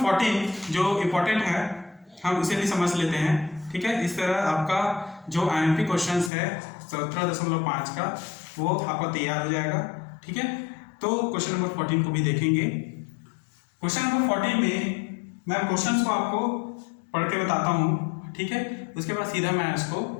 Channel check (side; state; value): right; drops out; at 6.3 s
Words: 14 जो इम्पोर्टेंट है हम उसे भी समझ लेते हैं। ठीक है, इस तरह आपका जो IMP क्वेश्चंस है 17.5 का वो आपका तैयार हो जाएगा। ठीक है, तो क्वेश्चन नंबर 14 को भी देखेंगे। क्वेश्चन नंबर 14 में मैं क्वेश्चंस को आपको पढ़ के बताता हूँ। ठीक है, उसके बाद सीधा मैं इसको